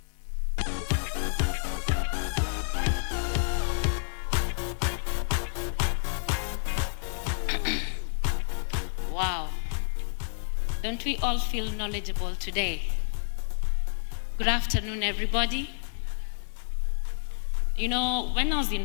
Wow, don't we all feel knowledgeable today? Good afternoon, everybody. You know, when I was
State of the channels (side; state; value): right; silent; digital silence